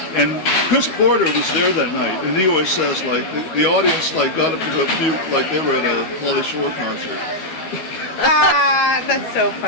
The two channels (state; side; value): late; right; 12 ms